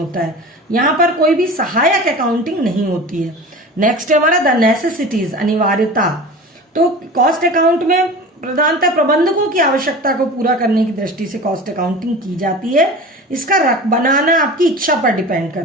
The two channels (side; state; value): both; normal; correlation 0.35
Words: है, यहां पर कोई भी सहायक अकाउंटिंग नहीं होती है। नेक्स्ट है हमारा द नेसेसिटीज, अनिवार्यता। तो कॉस्ट अकाउंट में प्रधानतः प्रबंधकों की आवश्यकता को पूरा करने की दृष्टि से कॉस्ट अकाउंटिंग की जाती है। इसका बनाना आपकी इच्छा पर डिपेंड